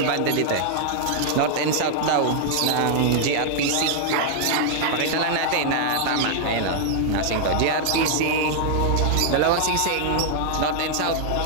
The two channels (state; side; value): different; both; correlation -0.01